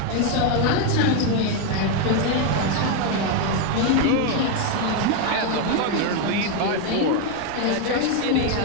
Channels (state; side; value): different; both; correlation 0.01